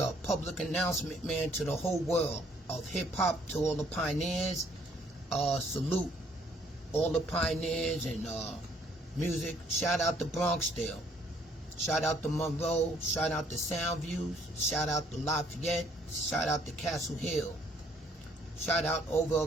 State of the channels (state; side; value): normal; both; correlation 0.63